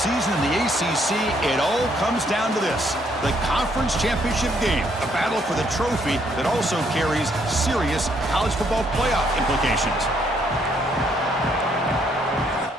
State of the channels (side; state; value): both; normal; correlation 0.70